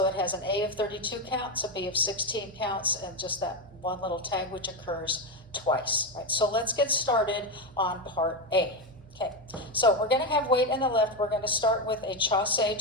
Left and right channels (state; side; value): normal; both; correlation 0.12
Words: it has an A of 32 counts, a B of 16 counts, and just that one little tag which occurs twice. Right, so let's get started on part A. Okay, so we're going to have weight in the left. We're going to start with a chassé